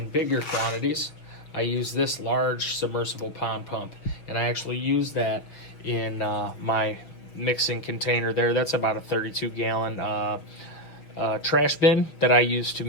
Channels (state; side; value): late; right; 6.1 ms